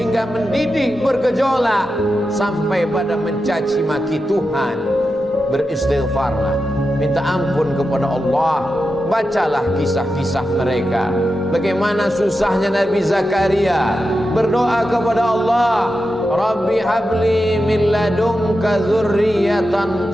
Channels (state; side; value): normal; both; correlation 0.90